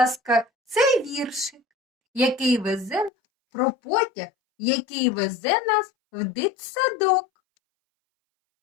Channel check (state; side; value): drops out; right; at 3.1 s